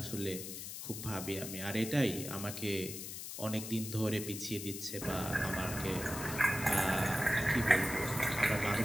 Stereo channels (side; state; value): left; noise; hiss, 8 dB below the sound